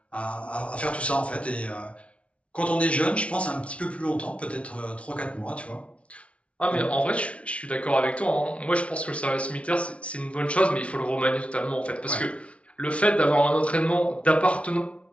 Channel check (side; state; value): right; late; 0.062 ms